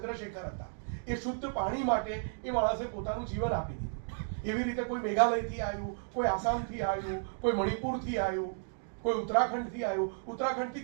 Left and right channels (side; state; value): left; silent; digital silence